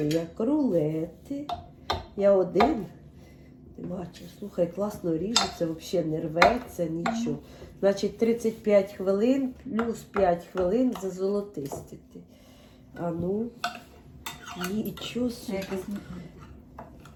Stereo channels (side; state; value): both; identical; correlation 1.00